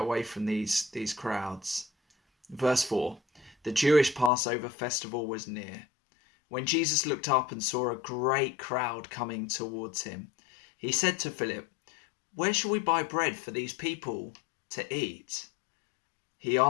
away from these crowds. Verse 4. The Jewish Passover festival was near. When Jesus looked up and saw a great crowd coming towards him, he said to Philip, "Where shall we buy bread for these people to eat?" He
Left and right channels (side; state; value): right; drops out; at 4.3 s